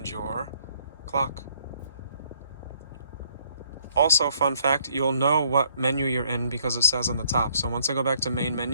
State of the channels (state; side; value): inverted; both; correlation -0.65